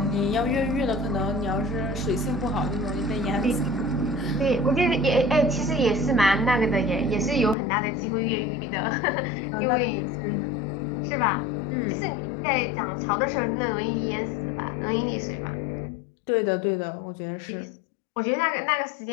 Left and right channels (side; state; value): right; drops out; at 7.6 s